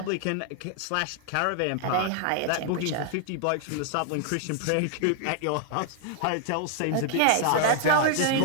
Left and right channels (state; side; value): different; both; correlation 0.00